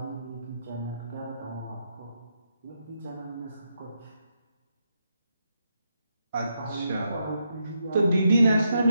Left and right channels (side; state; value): both; inverted; correlation -0.82